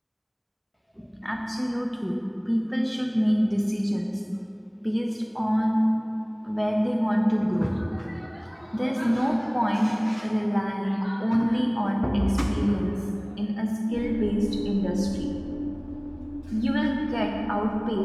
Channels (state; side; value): identical; both; correlation 1.00